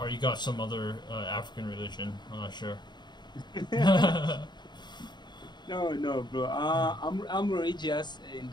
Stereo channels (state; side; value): late; right; 0.21 ms